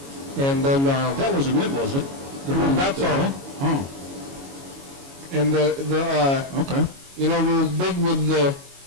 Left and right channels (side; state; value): left; late; 22 ms